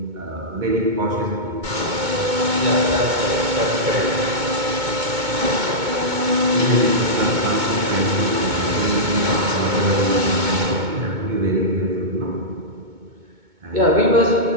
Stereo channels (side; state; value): left; late; 2.2 ms